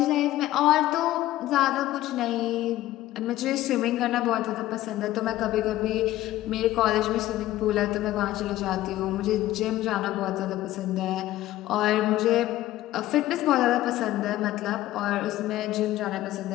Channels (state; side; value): quieter; right; 15.1 dB